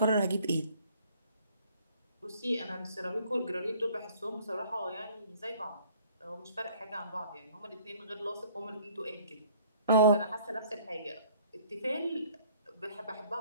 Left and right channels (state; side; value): inverted; both; correlation -0.55